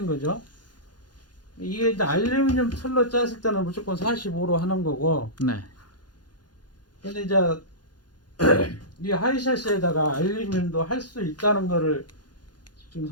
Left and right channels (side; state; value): right; late; 0.70 ms